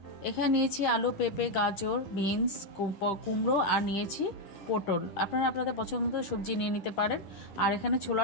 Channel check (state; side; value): late; right; 10 ms